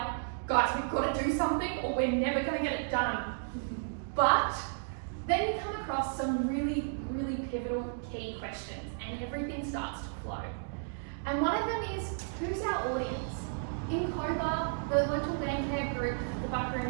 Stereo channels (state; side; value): silent; left; digital silence